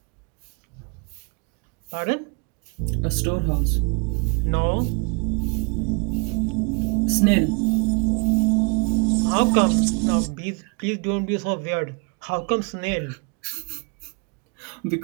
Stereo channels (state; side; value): quieter; left; 33.0 dB